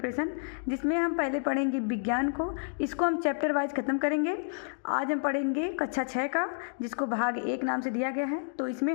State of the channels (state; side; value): silent; right; digital silence